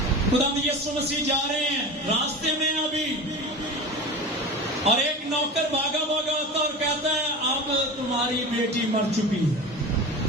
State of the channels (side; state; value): both; normal; correlation 0.30